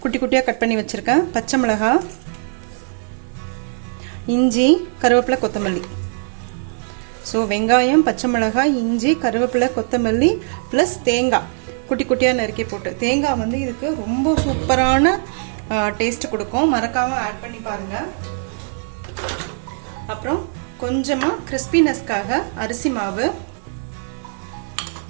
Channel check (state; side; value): silent; left; digital silence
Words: குட்டி குட்டியாக கட் பண்ணி வச்சுருக்கேன். பச்சை மிளகாய், இஞ்சி, கருவேப்பிலை, கொத்தமல்லி. ஸோ வெங்காயம், பச்சை மிளகாய், இஞ்சி, கருவேப்பிலை, கொத்தமல்லி ப்ளஸ் தேங்காய் குட்டி குட்டியாக நறுக்கி போட்டு. தேங்காய் இதுக்கு ரொம்ப சூப்பரான டேஸ்ட் கொடுக்கும். மறக்காமல் ஆட் பண்ணி பாருங்கள். அப்புறம் கொஞ்சமாக கிறிஸ்பினஸ்க்காக அரிசி மாவு.